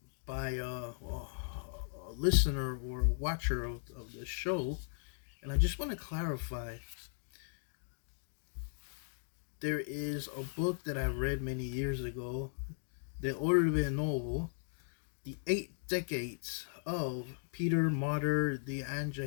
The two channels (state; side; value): silent; right; digital silence